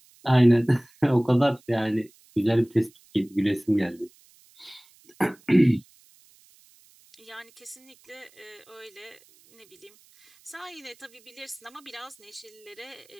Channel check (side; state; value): right; noise; hiss, 29 dB below the sound